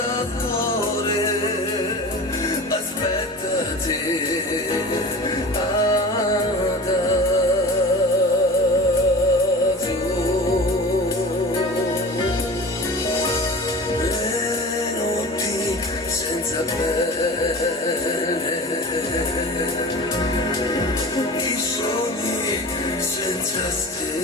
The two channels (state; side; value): normal; both; correlation 0.35